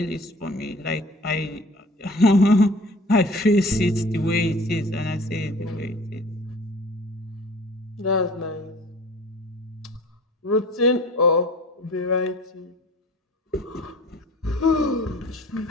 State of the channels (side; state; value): both; normal; correlation 0.45